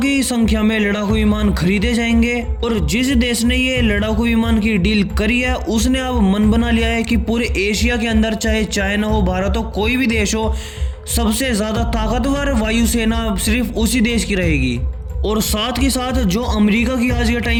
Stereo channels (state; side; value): identical; both; correlation 1.00